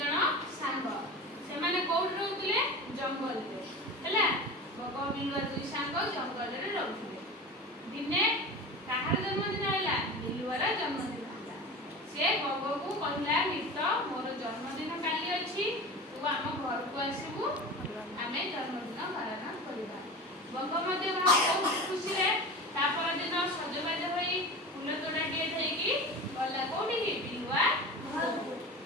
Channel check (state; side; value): normal; both; correlation 0.32